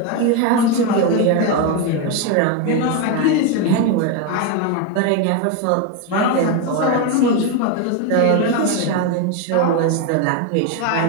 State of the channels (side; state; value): both; different; correlation 0.02